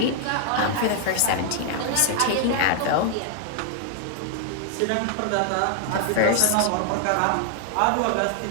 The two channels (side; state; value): both; different; correlation 0.00